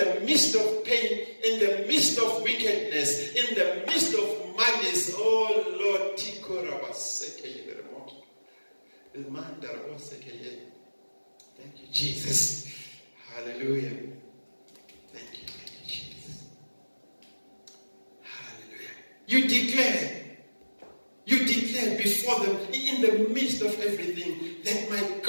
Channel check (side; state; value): both; inverted; correlation -1.00